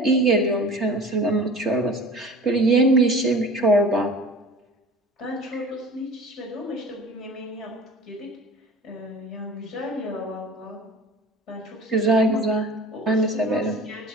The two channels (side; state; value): both; normal; correlation 0.41